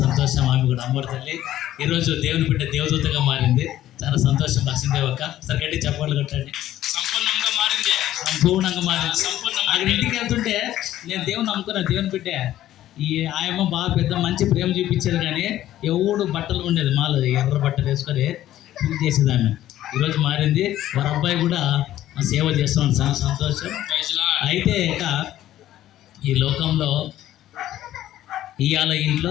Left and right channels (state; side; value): quieter; right; 13.3 dB